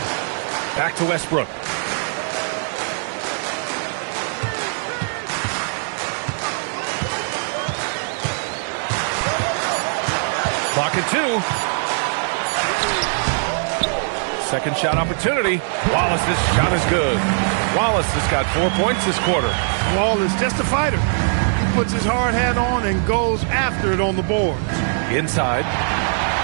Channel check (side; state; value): left; silent; digital silence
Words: Back to Westbrook. Clock at 2. Second shot opportunity. Wallace's shot is good. Wallace has got 4 points this quarter. Wall is just a fighter. He puts his hard hat on and goes after it on the boards. Inside.